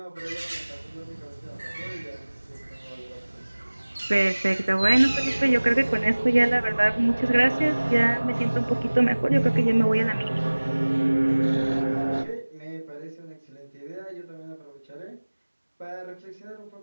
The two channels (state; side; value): inverted; both; correlation -1.00